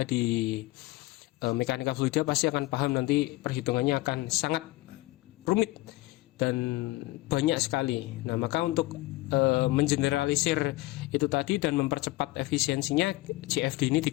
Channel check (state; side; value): quieter; right; 19.9 dB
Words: di mekanika fluida pasti akan paham nanti perhitungannya akan sangat rumit dan banyak sekali. Nah, maka untuk mengeneralisir itu tadi dan mempercepat efisiensinya, CFD ini